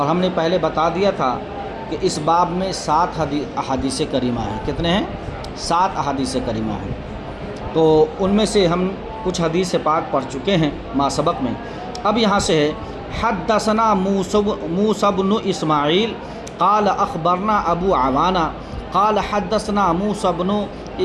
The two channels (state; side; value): identical; both; correlation 1.00